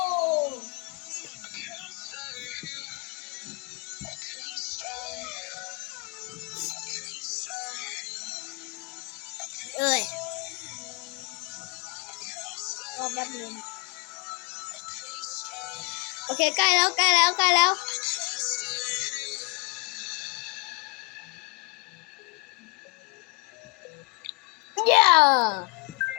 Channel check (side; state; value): right; quieter; 28.7 dB